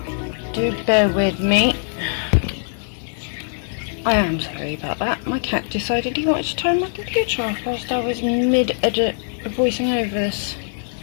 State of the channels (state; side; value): silent; right; 63 dB below the other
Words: Do bear with me. I am sorry about that. My cat decided he wanted to turn my computer off whilst I was mid-edit voicing over this.